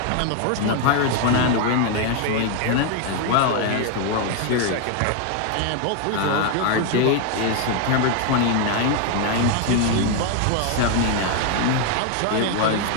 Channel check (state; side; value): different; both; correlation 0.01